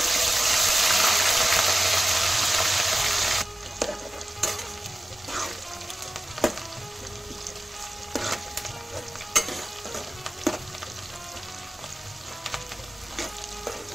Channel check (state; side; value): normal; both; correlation 0.95